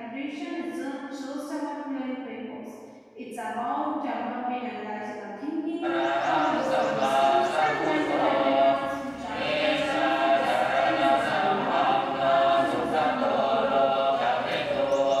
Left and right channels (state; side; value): identical; both; correlation 1.00